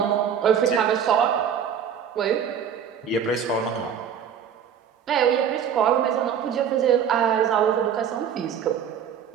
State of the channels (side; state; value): left; quieter; 8.1 dB